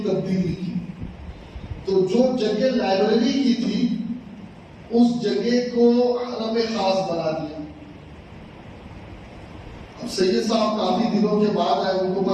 تبدیلی کی. تو جو جگہ لائبریری کی تھی اس جگہ کو حرم خاص بنا دیا. اب سید صاحب کافی دنوں کے بعد آئے, ان کو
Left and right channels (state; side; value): identical; both; correlation 1.00